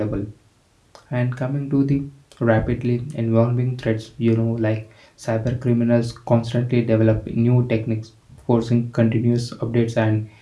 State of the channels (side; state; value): both; identical; correlation 1.00